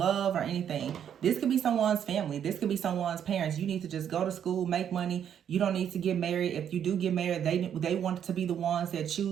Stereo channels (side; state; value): left; quieter; 9.0 dB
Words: or anything. This could be someone's family. This could be someone's parents. You need to just go to school, make money. You don't need to get married. If you do get married, they want to be the ones that